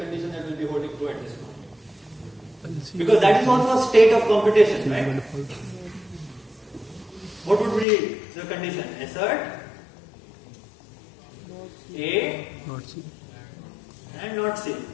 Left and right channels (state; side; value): drops out; right; at 7.9 s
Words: that will be holding true at this point? Because that is also a state of computation, right? What would be the condition? Assert A not C. And not C.